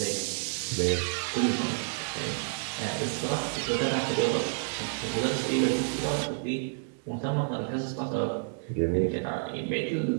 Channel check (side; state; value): left; silent; digital silence